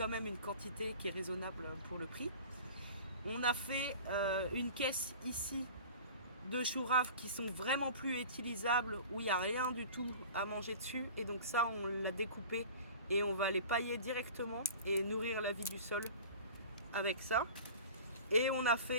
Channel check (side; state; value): both; inverted; correlation -0.39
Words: même une quantité qui est raisonnable pour le prix. On a fait une caisse ici de choux raves qui sont vraiment plus utilisables, où il n'y a rien du tout à manger dessus. Et donc ça, on l'a découpé et on va les pailler directement et nourrir la vie du sol avec ça. Et on a